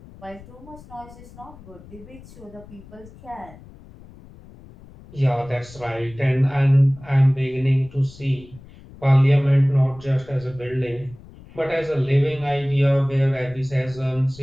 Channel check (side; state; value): left; noise; rumble, 20 dB below the sound